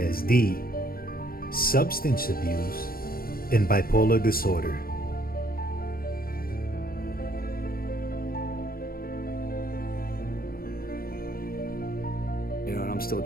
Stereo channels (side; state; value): right; late; 0.43 ms